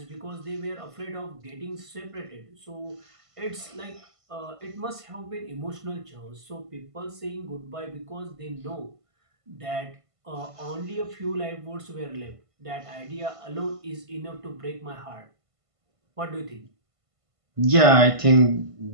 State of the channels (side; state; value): left; late; 1.5 ms